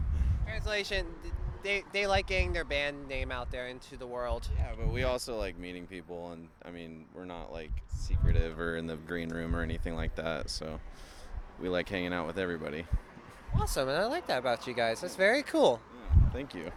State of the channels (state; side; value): identical; both; correlation 1.00